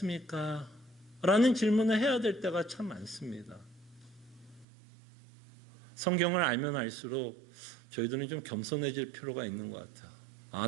라는 질문을 해야 될 때가 참 많습니다. 성경을 알면 알수록 저희들은 좀 겸손해질 필요가 있는 것 같아요.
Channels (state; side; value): drops out; left; at 4.7 s